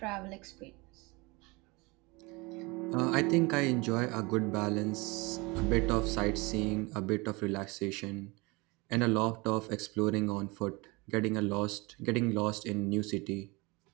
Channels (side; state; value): left; quieter; 25.6 dB